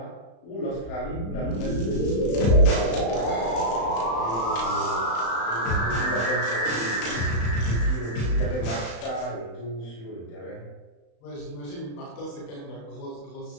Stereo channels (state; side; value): late; right; 35 ms